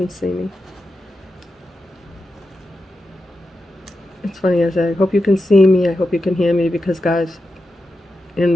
see me. It's funny, I say, I hope you can see me, I hope you can hear me, because guys,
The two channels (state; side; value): normal; both; correlation 0.89